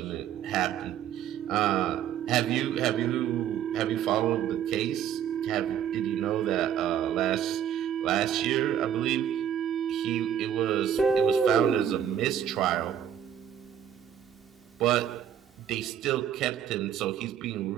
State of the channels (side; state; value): left; quieter; 9.6 dB